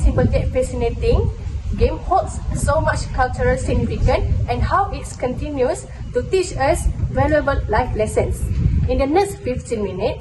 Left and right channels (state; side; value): identical; both; correlation 1.00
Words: simple yet fascinating game holds so much cultural significance and how it continues to teach us valuable life lessons. In the next 15